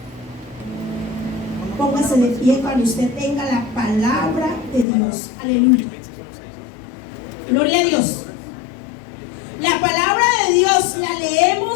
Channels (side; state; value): right; drops out; at 4.9 s